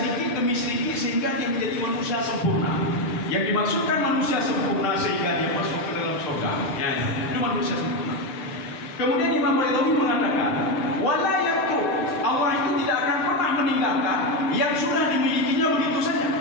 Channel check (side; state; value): right; late; 7.8 ms